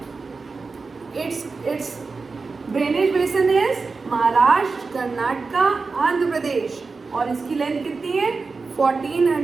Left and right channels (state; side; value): quieter; left; 4.3 dB